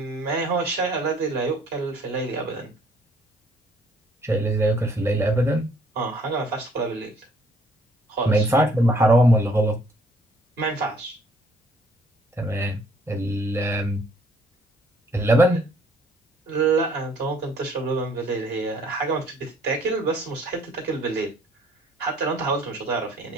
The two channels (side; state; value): both; normal; correlation 0.61